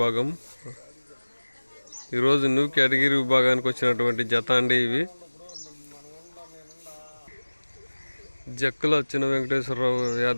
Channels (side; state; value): both; inverted; correlation -1.00